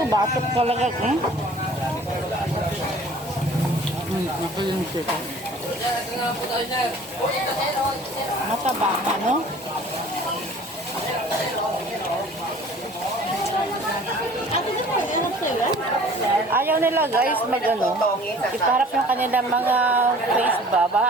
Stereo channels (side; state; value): both; normal; correlation 0.48